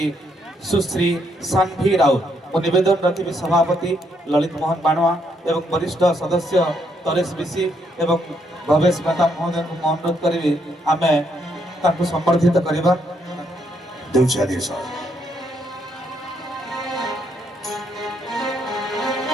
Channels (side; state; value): both; normal; correlation 0.74